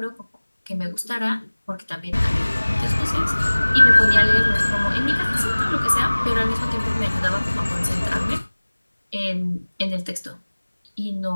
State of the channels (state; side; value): inverted; both; correlation -1.00